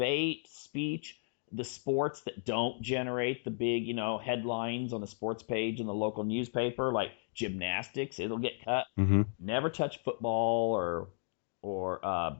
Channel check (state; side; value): silent; right; digital silence